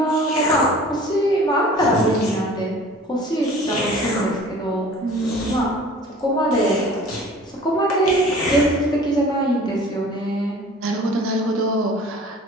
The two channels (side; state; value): both; normal; correlation 0.46